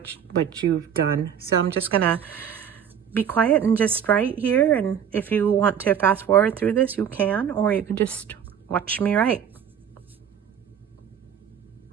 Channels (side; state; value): left; quieter; 8.3 dB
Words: you've done. So I'm just gonna be quiet and just write here, and if you want to fast forward through this, you can, or you can just watch me write.